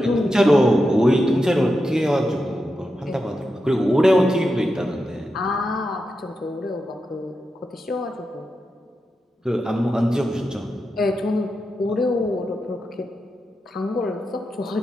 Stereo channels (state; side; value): normal; both; correlation 0.88